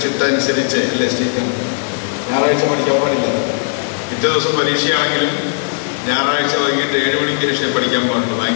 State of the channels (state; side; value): silent; right; digital silence